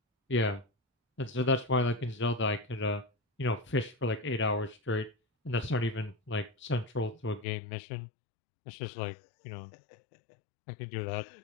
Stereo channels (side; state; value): right; drops out; at 7.5 s